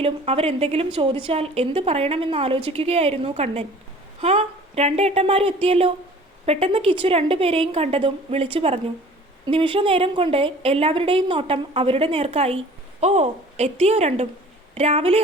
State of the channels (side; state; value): both; normal; correlation 0.47